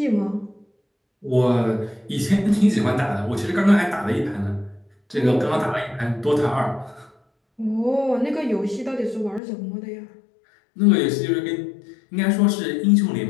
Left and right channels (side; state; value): right; drops out; at 9.4 s